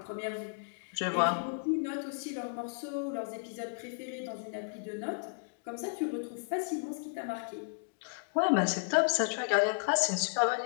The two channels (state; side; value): silent; right; digital silence